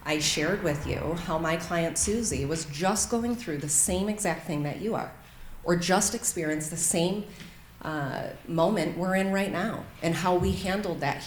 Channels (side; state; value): both; identical; correlation 1.00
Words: I shared with you how my client Susie was just going through the same exact thing that you are, or just experienced the same moment we're in right now, and how we handled that